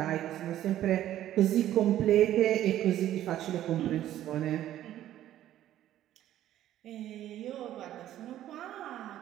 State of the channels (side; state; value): left; quieter; 12.6 dB